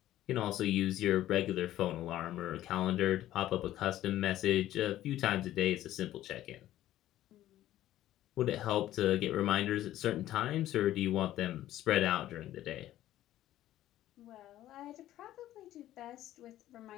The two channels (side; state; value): right; quieter; 13.6 dB